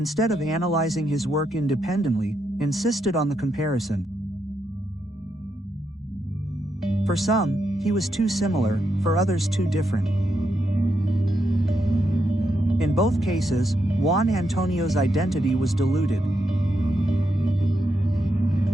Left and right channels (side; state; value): both; normal; correlation 0.82